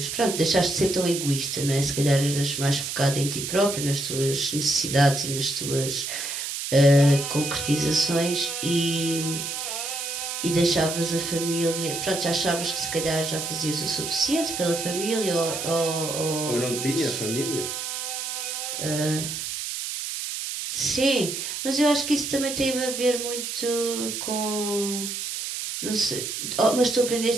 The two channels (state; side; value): noise; right; hiss, 5 dB below the sound